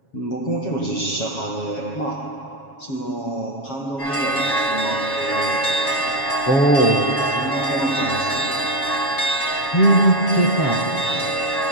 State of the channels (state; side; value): late; right; 7.4 ms